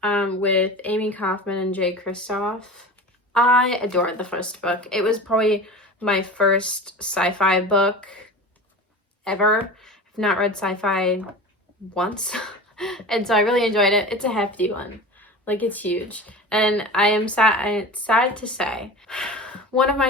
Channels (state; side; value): normal; both; correlation 0.33